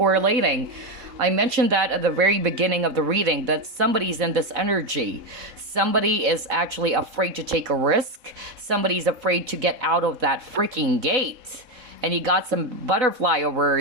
I mentioned that at the very beginning of the reading, that somebody's in this energy. Somebody is actually afraid to take a risk. Somebody's afraid to get out of that freaking gate. And you got some butterfly over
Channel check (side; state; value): left; late; 3.7 ms